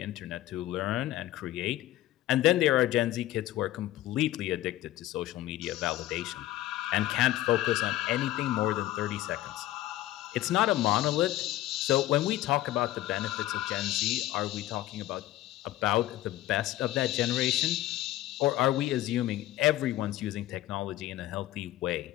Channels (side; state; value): right; quieter; 15.0 dB